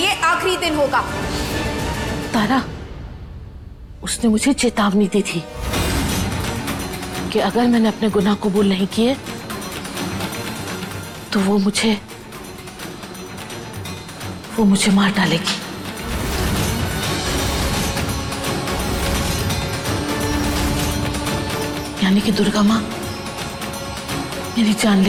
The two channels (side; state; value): both; identical; correlation 1.00